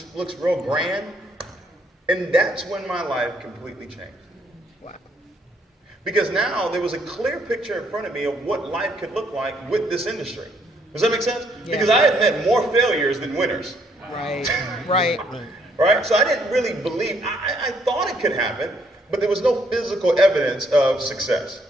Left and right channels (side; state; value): both; normal; correlation 0.69